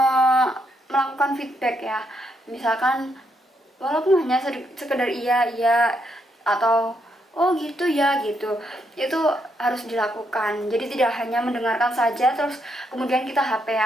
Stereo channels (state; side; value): normal; both; correlation 0.77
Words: melakukan feedback ya. Misalkan walaupun hanya sekedar iya atau oh gitu ya gitu, itu harus dilakukan. Jadi tidak hanya mendengarkan saja terus kemudian kita